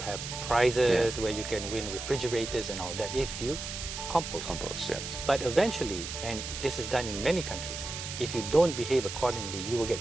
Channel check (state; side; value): noise; right; hiss, 7 dB below the sound